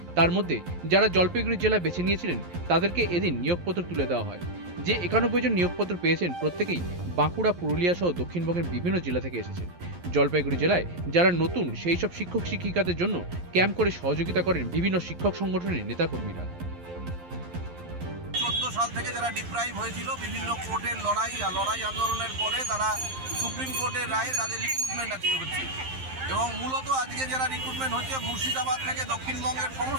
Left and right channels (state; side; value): late; left; 11 ms